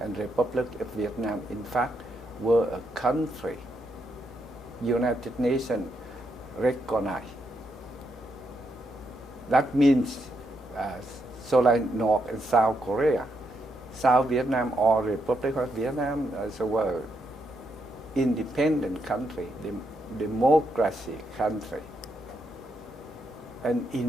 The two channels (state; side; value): normal; both; correlation 0.79